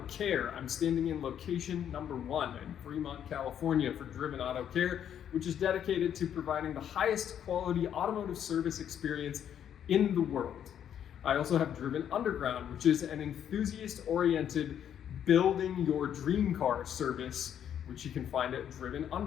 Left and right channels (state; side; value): quieter; right; 9.4 dB